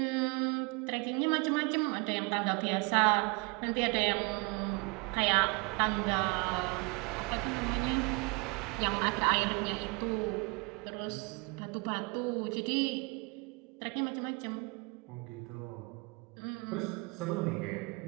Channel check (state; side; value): quieter; left; 29.5 dB